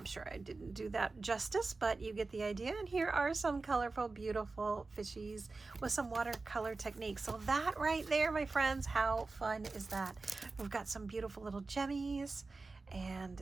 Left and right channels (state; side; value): quieter; left; 3.7 dB